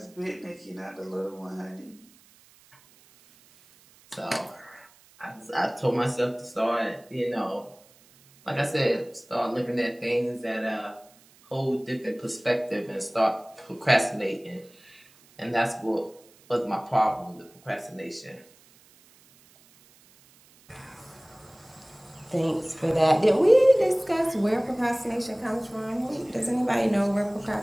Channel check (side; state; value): right; noise; hiss, 28 dB below the sound